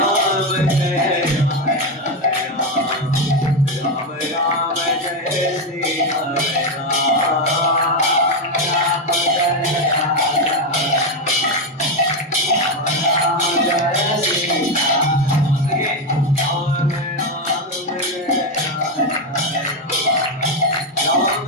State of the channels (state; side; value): normal; both; correlation 0.08